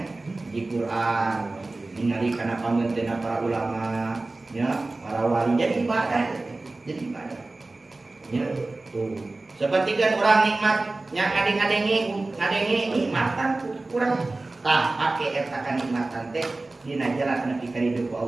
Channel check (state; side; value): quieter; left; 3.1 dB